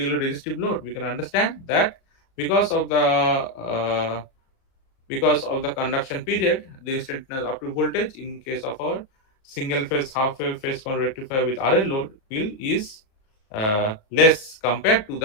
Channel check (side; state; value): right; late; 37 ms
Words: resistive load, we can understand that because of the conduction period, the instantaneous output voltage in case of our single phase half wave phase rectifier with RL load is less compared to